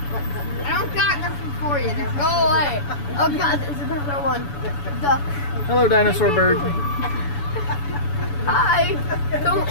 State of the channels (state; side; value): late; right; 7.0 ms